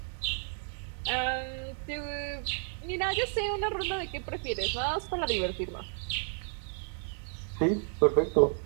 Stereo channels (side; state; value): left; silent; 57 dB below the other